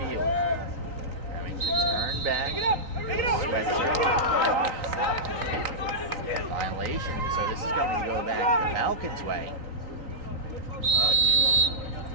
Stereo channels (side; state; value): left; late; 3.9 ms